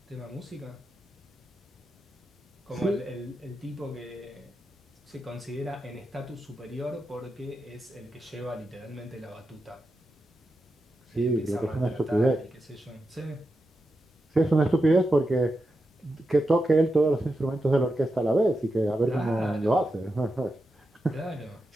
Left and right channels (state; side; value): normal; both; correlation 0.88